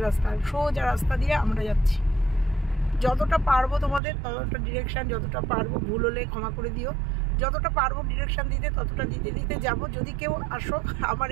রাস্তা, সোজা রাস্তা দিয়ে আমরা যাচ্ছি। যতটা পারবো তোমাদের ততটা ডিরেকশান, যতটা পারবো, ভুল হলে ক্ষমা করে দিও, যতটা পারবো ডিরেকশান দিতে ততটা দিতে দিতে যাবো। যদি কেউ আসো আমার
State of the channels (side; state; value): left; drops out; at 4.0 s